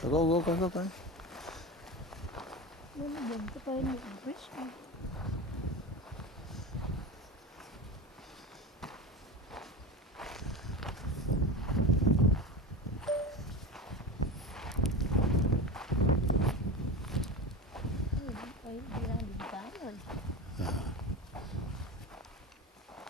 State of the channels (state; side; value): normal; both; correlation 0.26